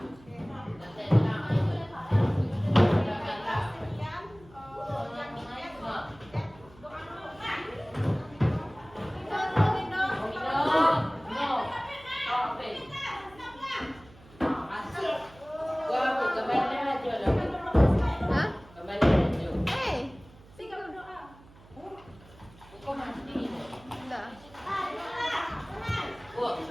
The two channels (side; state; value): right; noise; hum, 24 dB below the sound